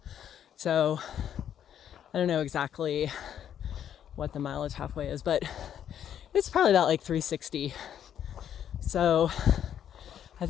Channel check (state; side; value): quieter; right; 9.6 dB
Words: So I don't know exactly what the mileage halfway is, but it's probably about like 360. So I